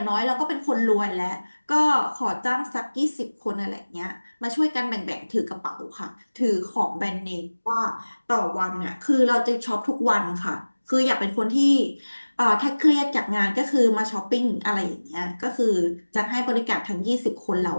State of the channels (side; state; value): both; inverted; correlation -1.00